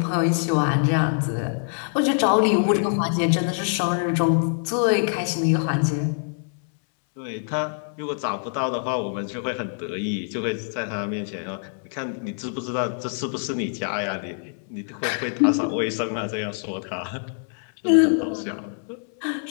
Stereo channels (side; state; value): right; silent; 62 dB below the other